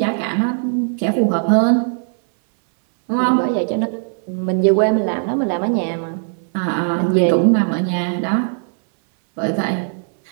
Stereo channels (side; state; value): left; silent; 62 dB below the other